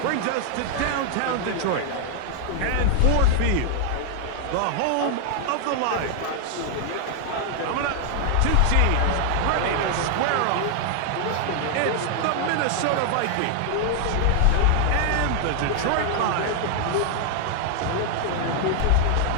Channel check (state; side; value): different; both; correlation 0.00